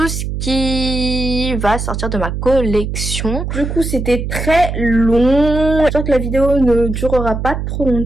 ce qui va sortir de ma collection. Du coup, c'était très long. J'espère que la vidéo ne durera pas trop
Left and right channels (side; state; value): right; noise; hum, 4 dB below the sound